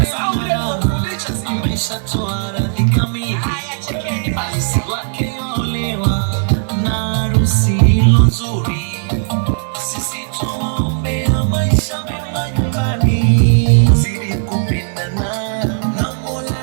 amesha toa radhi kamili. Alisi wake olewa na harusi ilo nzuri. Sisi tuombea maisha mema nyumbani, zidi kupendana na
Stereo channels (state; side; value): silent; left; digital silence